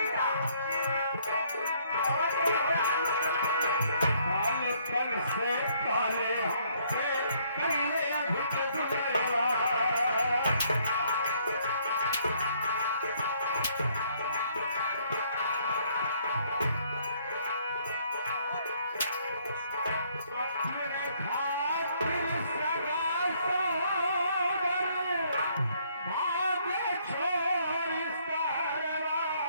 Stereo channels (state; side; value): inverted; both; correlation -0.66